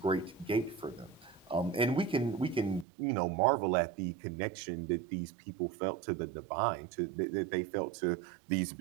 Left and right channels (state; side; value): drops out; left; at 2.9 s